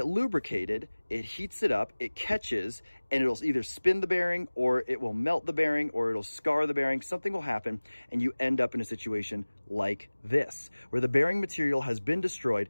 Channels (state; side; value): inverted; both; correlation -1.00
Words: lubricated, it heats it up, it catches, and it'll either spin the bearing, or it will melt the bearing, or it'll scar the bearing. Something will happen, and you end up in a situation like this, where the bearing material has been destroyed,